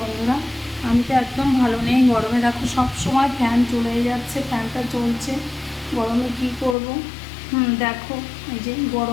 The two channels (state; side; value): drops out; right; at 6.8 s